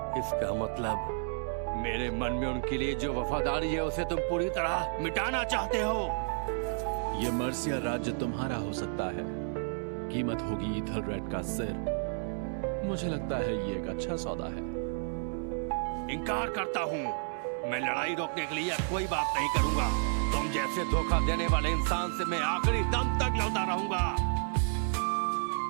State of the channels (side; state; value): left; silent; digital silence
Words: इसका मतलब मेरे मन में उनके लिए जो वफादारी है उसे तुम पूरी तरह मिटाना चाहते हो। यह मर्सिया राज्य तुम्हारा हो सकता है, कीमत होगी ईथलरेड का सिर। मुझे लगता है ये एक अच्छा सौदा है। इनकार करता हूँ। मैं लड़ाई रोकने के लिए कोई बात नहीं करूंगा। तुम जैसे धोखा देने वाले इंसान से मैं आखिरी दम तक लड़ता रहूंगा।